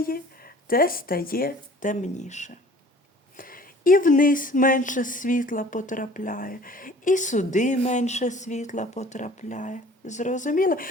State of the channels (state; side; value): normal; both; correlation 0.49